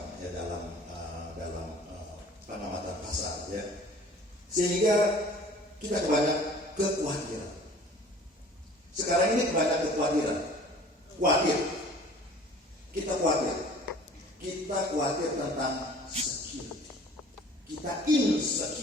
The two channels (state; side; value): normal; both; correlation 0.48